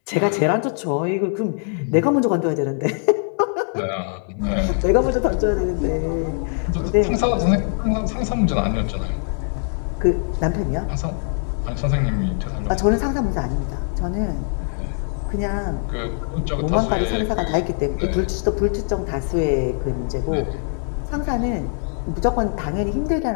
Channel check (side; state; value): right; silent; 56 dB below the other